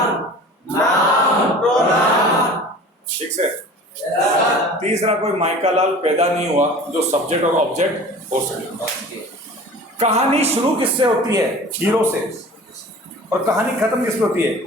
ठीक से। तीसरा कोई माइका लाल पैदा नहीं हुआ जो सब्जेक्ट और ऑब्जेक्ट हो सके। कहानी शुरू किससे होती है? हीरो से। और कहानी खत्म किस पे होती है?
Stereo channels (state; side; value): normal; both; correlation 0.41